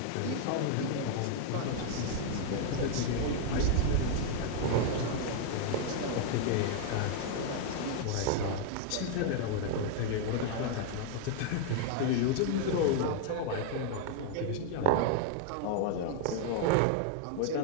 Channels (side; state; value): both; different; correlation 0.00